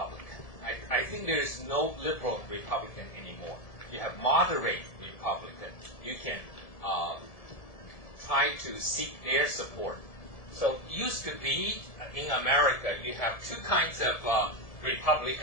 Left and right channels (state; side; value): late; right; 1.7 ms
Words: I think there is no liberal Republican anymore. You have moderate Republican. You can try to seek their support. So used to be in America, you have two kinds of